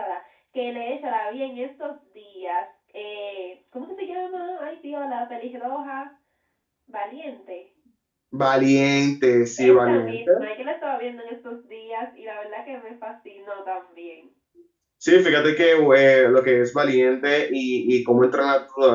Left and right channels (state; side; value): identical; both; correlation 1.00